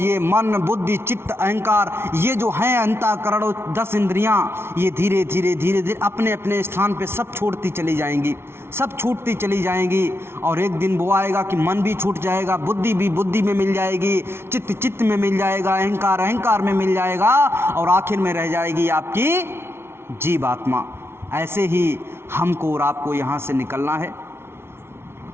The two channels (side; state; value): left; late; 0.12 ms